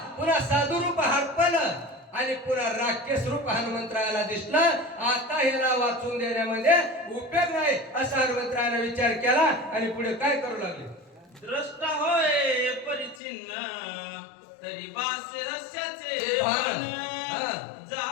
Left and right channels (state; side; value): drops out; right; at 13.2 s